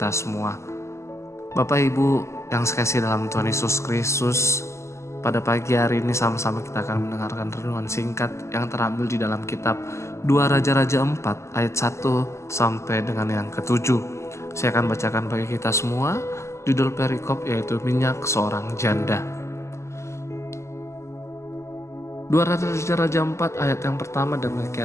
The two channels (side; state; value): right; late; 0.14 ms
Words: semua. Bapak Ibu yang sekasih dalam Tuhan Yesus Kristus, pada pagi hari ini sama-sama kita akan mendengarkan renungan singkat yang terambil di dalam kitab 2 Raja-Raja 4 ayat 1 sampai dengan yang ke-7. Saya akan bacakan bagi kita semua judul perikop yaitu minyak seorang janda. 2 Raja-Raja 4 ayat yang pertama